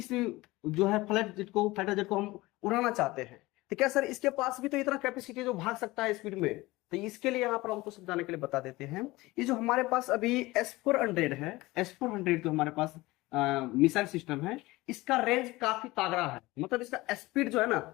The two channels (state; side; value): quieter; right; 20.1 dB